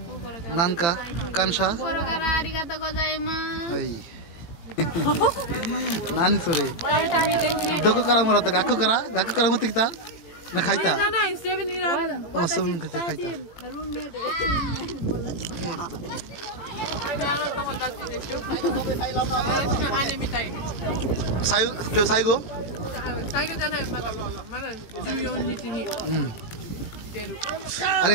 nanka kansha kokoro kara arigatou gozaimasu hai nani sore doko kara moratta gakko kara motte kita না খাইতা না 7-Eleven অসম খেতে খাইতা কেউ সাইগো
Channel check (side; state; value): right; late; 18 ms